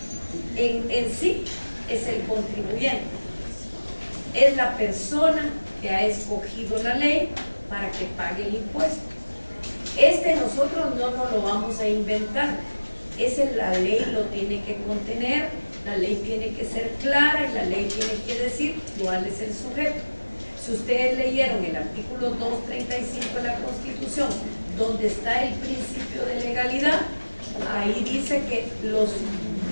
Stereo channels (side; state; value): both; inverted; correlation -1.00